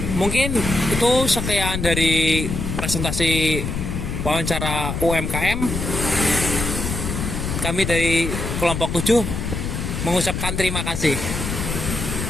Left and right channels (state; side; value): noise; left; rumble, 3 dB below the sound